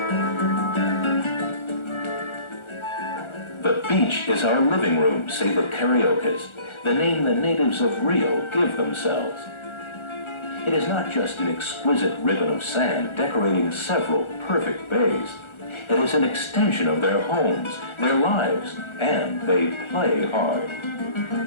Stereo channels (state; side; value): late; right; 1.4 ms